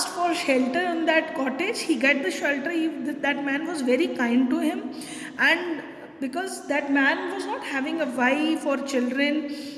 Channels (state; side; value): identical; both; correlation 1.00